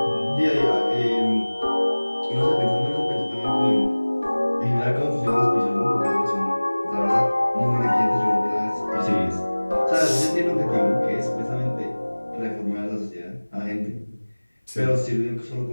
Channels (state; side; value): inverted; both; correlation -1.00